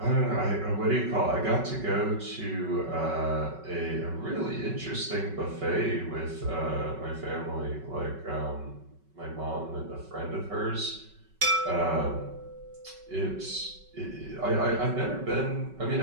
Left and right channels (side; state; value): left; late; 5.3 ms